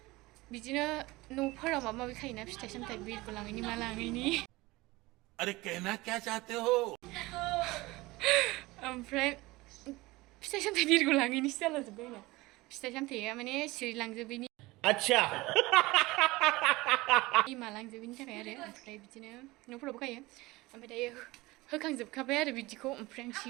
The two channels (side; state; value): left; quieter; 21.0 dB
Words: बिदिनो न'फोराव माबा माबि खायोना फिथाइ सामथाइ बिरखौ लाङैनि मा लाङैनि. अरे कहना क्या चाहते हो ओमफ्राय फिथाइ सामथाइ बिरखौ लाङैनिसो जालाजोब्बाय आंना फिथाइ सामथाइया माने सिरिलांजोबैनि अच्छा मालांजोबैनि थाखाय आरो ओमफ्राय बिदिनो न'फोरावबो गायो ओमफ्राय दायो होखांजोबखाबाय आरो बिदिखौ ओमफ्राय आं